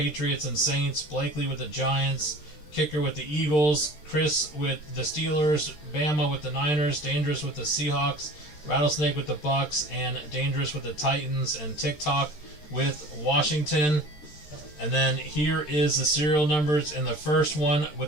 and Saints. Blakely with the Giants. Kicker with the Eagles. Chris with the Steelers. Bama with the Niners. Dangerous with the Seahawks. Rattlesnake with the Bucks. And Dangerous with the Titans. And TikTok with Washington. And then here is the serial numbers in the first one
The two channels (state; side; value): late; right; 13 ms